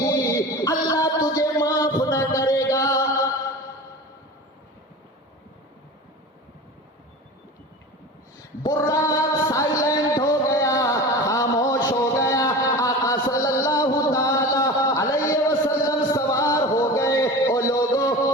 अल्लाह तुझे माफ न करेगा। बुर्राक साइलेंट हो गया, खामोश हो गया। आका सल्लल्लाहु ताला अलैहि वसल्लम सवार हो गए। ओ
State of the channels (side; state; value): both; normal; correlation 0.33